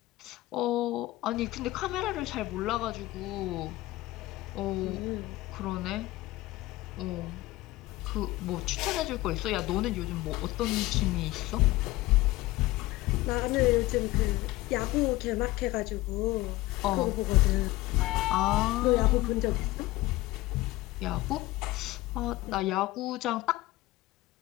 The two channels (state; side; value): quieter; right; 18.4 dB